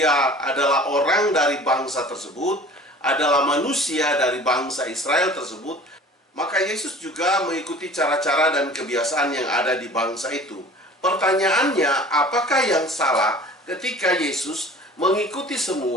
adalah orang dari bangsa tersebut, adalah manusia dari bangsa Israel tersebut, maka Yesus juga mengikuti cara-cara dan kebiasaan yang ada di bangsa itu. Pertanyaannya, apakah yang salah ketika Yesus mengikuti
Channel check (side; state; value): both; normal; correlation 0.45